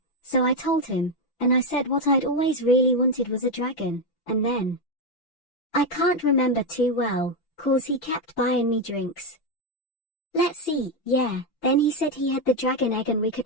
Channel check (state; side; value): late; right; 5.9 ms